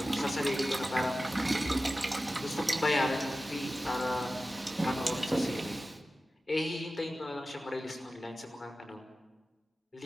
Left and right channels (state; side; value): normal; both; correlation 0.95